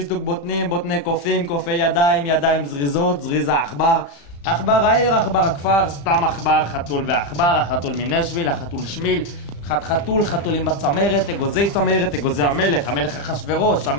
בוטנים, בוטני קופים, קופי ידיים, ידיים זריזות, זריז העכבר, עכבר העיר, עכבר הכפר, סתם עכבר, חתול ועכבר, החתול מנשוויל, החתול שמיל, חתולים בצמרת, אגוזי צמרת, אגוזי המלך אחשוורוש,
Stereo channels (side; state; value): right; late; 35 ms